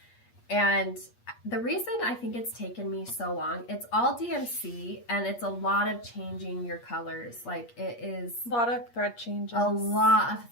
And the reason I think it's taken me so long, it's all DMC, and it's a lot of changing your colors. Like, it is a lot of thread changes. A lot of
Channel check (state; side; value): late; right; 8.4 ms